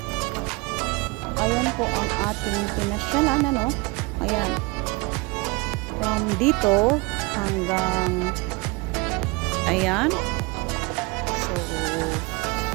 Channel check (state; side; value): quieter; left; 26.4 dB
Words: ayan po ang ating pinasyalan Ayan. From dito hanggang ayan. So